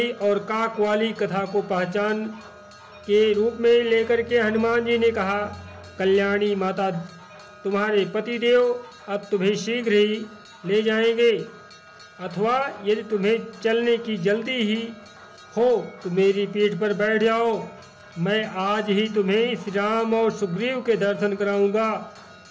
और काक वाली कथा को पहचान के रूप में लेकर के हनुमान जी ने कहा, कल्याणी माता, तुम्हारे पतिदेव अब तुम्हें शीघ्र ही ले जाएंगे, अथवा यदि तुम्हें चलने की जल्दी ही हो तो मेरी पीठ पर बैठ जाओ। मैं आज ही तुम्हें श्री राम और सुग्रीव के दर्शन कराऊंगा।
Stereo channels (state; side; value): identical; both; correlation 1.00